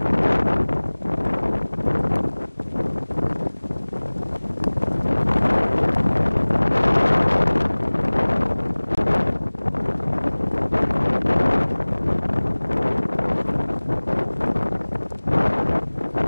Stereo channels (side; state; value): both; inverted; correlation -1.00